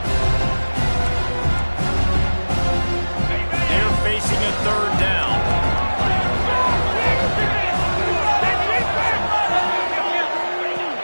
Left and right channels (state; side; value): inverted; both; correlation -1.00